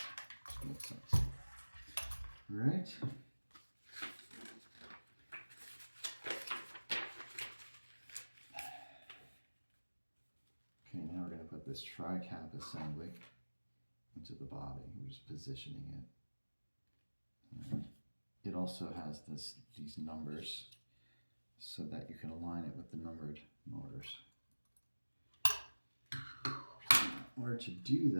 makes sense. All right. Okay, now we're going to put this tri-cap assembly into the body. We're just positioning it. And it also has these numbers so that you can align it with the numbered motors. In order to do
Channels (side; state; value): both; inverted; correlation -1.00